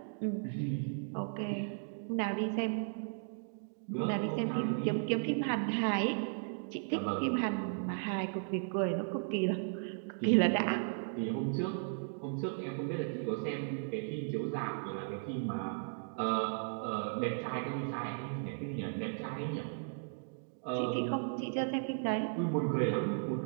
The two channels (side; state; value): left; silent; digital silence